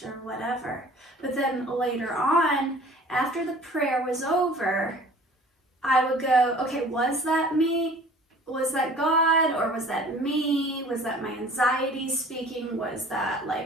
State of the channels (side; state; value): both; normal; correlation 0.48